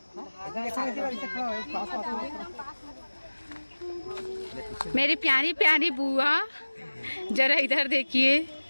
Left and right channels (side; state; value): both; inverted; correlation -1.00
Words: मेरी प्यारी प्यारी बुआ जरा इधर देखिए।